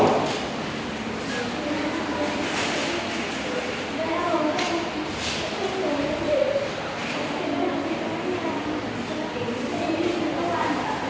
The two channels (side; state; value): both; identical; correlation 1.00